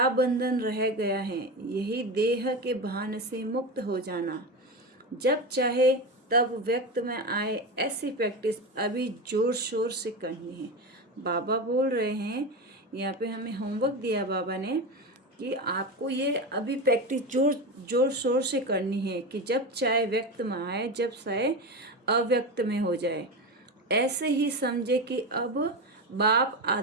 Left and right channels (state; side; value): normal; both; correlation 0.20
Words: बंधन रह गया है, यही देह के भान से मुक्त हो जाना। जब चाहे तब व्यक्त में आए, ऐसी प्रैक्टिस अभी जोर शोर से करनी है। बाबा बोल रहे हैं, यहाँ पे हमें होमवर्क दिया बाबा ने कि आपको ये अभी प्रैक्टिस जोर जोर शोर से करनी है कि जब चाहे व्यक्त में आए, जब चाहे अव्यक्त में हो जाए। ऐसे ही समझे कि अब बाप